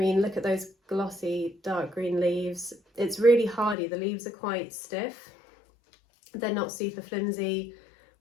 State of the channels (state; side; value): drops out; right; at 3.8 s